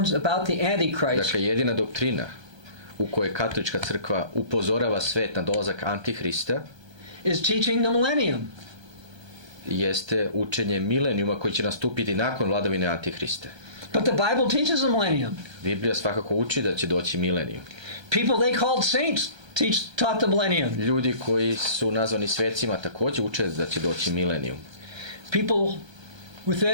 about the Antichrist Dakle, jedina doktrina u kojoj katolička crkva upozorava svet na dolazak Antihrista is teaching the millennium. jeste učenje milenijuma koji će nastupiti nakon vladavine Antihrista. But the Bible teaches the millennium. Biblija svakako uči da će doći milenijum. People they called saints taught the millennium. Ljudi koji su nazvani svecima također uče da će doći milenijum. People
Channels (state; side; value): late; left; 1.3 ms